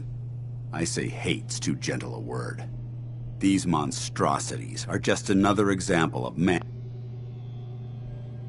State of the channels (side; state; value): both; identical; correlation 1.00